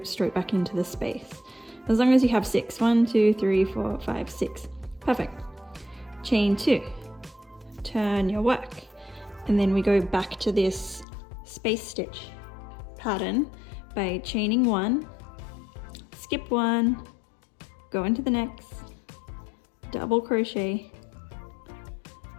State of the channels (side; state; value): right; drops out; at 11.1 s